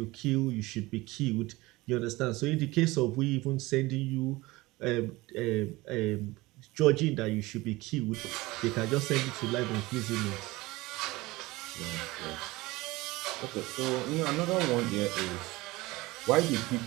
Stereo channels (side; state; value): left; quieter; 20.7 dB